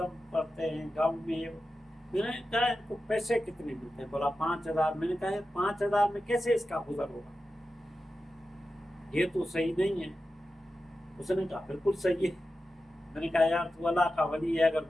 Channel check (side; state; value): both; normal; correlation 0.92